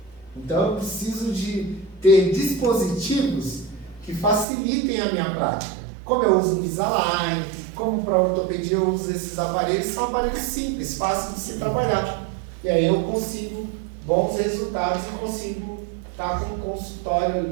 Então, eu preciso de ter dispositivos que facilitem a minha prática. Como eu uso Invisalign, como para ortopedia eu uso esses aparelhos, são aparelhos simples, fáceis de se trabalhar. E aí eu consigo bons resultados e consigo estar com o consultório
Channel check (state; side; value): drops out; left; at 4.5 s